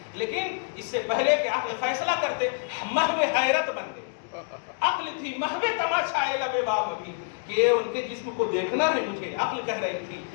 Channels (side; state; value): right; silent; digital silence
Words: لیکن اس سے پہلے کہ عقل فیصلہ کرتے محو حیرت بن گئے. عقل تھی محو تماشائے لب بام. ابھی کہ ان کے جسم کو دیکھنا ہے مجھے، عقل کہہ رہی تھی،